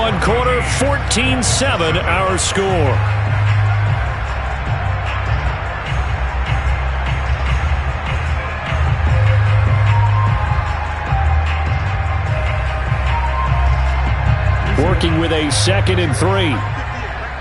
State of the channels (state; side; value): identical; both; correlation 1.00